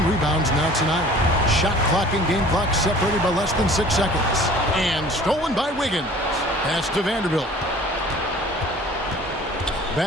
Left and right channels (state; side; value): normal; both; correlation 0.48